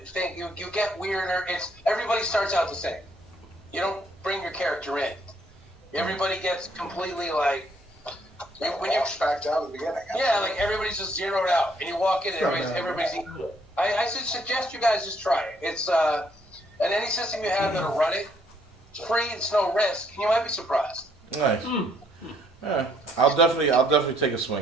think. You get weirder. Everybody starts out the same. You don't bring your character in. Everybody gets completely like when you back down at the beginning. yeah, like everybody's just zeroed out, and you walk in, and everybody's equal. I suggest you guys just try it. It's and any system you have that'll run it, it's free. It's no risk, and you might be surprised. Nice. Yeah, I'll definitely take a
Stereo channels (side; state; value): both; normal; correlation 0.68